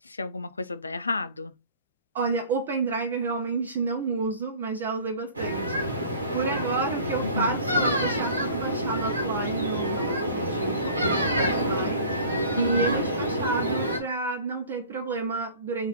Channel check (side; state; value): both; inverted; correlation -0.45